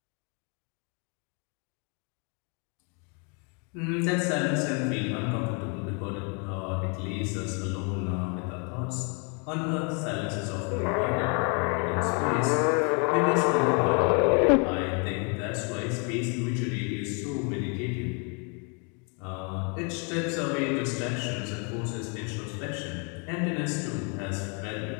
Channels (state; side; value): quieter; right; 36.3 dB